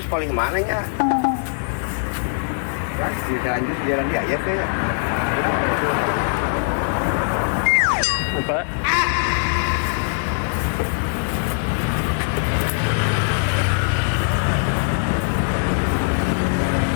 paling mana nya? Di Calanjus jalan dia ya teh. Lupa.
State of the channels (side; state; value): right; silent; digital silence